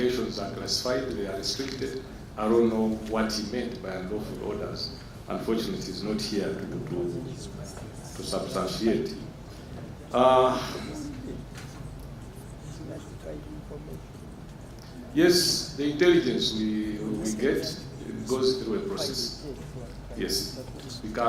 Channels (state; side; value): identical; both; correlation 1.00